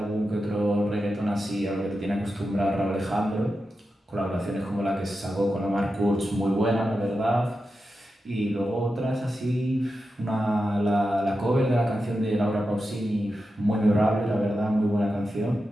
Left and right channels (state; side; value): normal; both; correlation 0.90